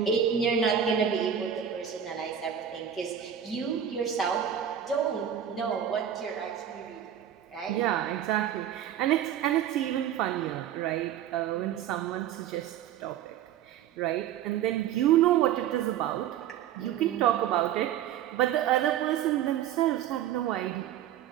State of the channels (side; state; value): left; quieter; 9.7 dB